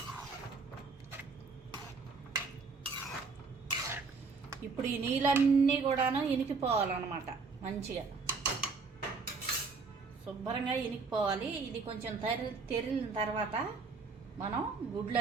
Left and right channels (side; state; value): left; quieter; 4.5 dB